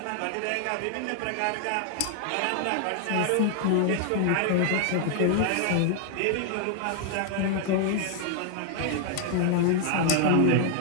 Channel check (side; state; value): both; different; correlation 0.00